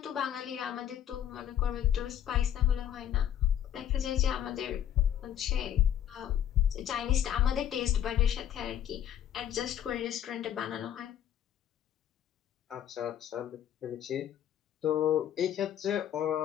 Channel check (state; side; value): quieter; right; 10.4 dB